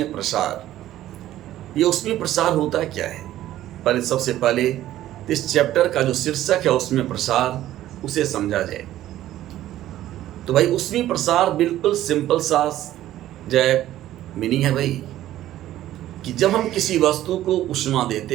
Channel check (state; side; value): quieter; left; 13.6 dB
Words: प्रसार। ये ऊष्मीय प्रसार होता क्या है? सबसे पहले इस चैप्टर का जो शीर्षक है ऊष्मीय प्रसार, उसे समझा जाए। तो भाई ऊष्मीय प्रसार बिल्कुल सिंपल सा जय मीनिंग है भाई कि जब हम किसी वस्तु को ऊष्मा